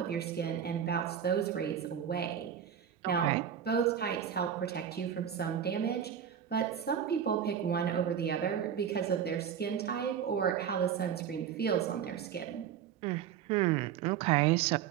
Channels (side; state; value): left; quieter; 8.8 dB